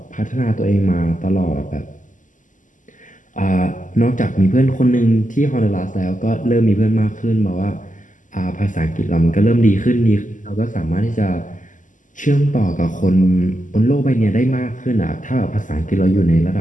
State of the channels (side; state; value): right; late; 0.37 ms